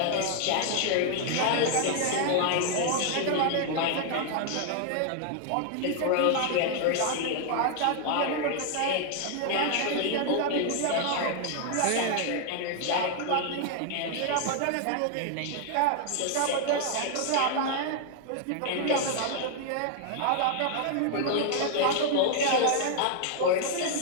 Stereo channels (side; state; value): both; different; correlation 0.00